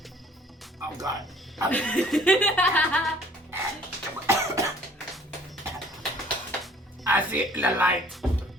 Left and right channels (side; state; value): both; normal; correlation 0.55